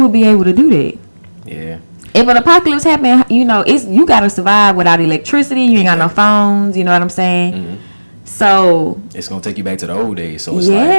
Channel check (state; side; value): inverted; both; correlation -1.00